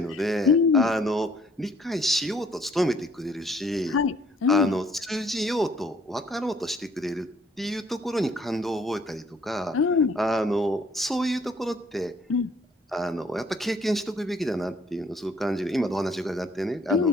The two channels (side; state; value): both; normal; correlation 0.61